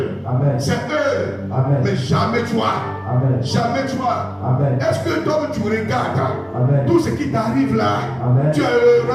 c'est eux, mais jamais toi. Jamais toi. Est-ce que toi tu regardes tout ce qui t'arrive là? Tu es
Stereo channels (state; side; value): identical; both; correlation 1.00